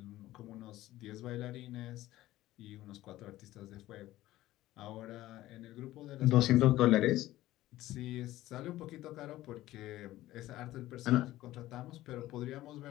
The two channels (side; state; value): right; quieter; 15.7 dB